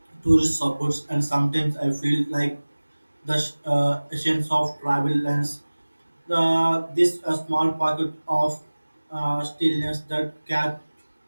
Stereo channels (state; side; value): inverted; both; correlation -1.00